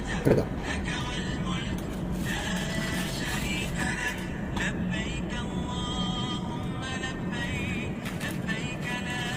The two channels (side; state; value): both; identical; correlation 1.00